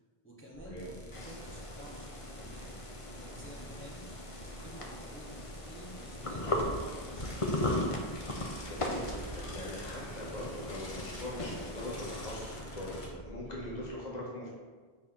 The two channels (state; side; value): late; right; 1.5 ms